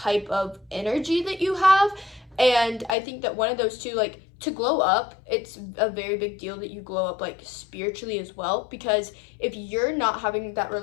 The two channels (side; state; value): right; drops out; at 3.0 s